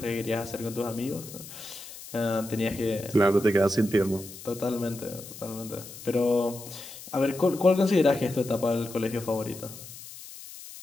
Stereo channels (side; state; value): left; noise; hiss, 14 dB below the sound